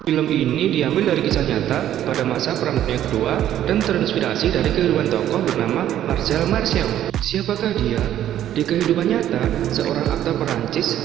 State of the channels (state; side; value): quieter; left; 11.7 dB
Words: Film ini diambil dari kisah nyata pada masa Perang Dunia Kedua dan terinspirasi dari kehidupan tokoh bernama Marcel Marceau. Siapakah dia? Di kehidupan nyata, seorang aktor Perancis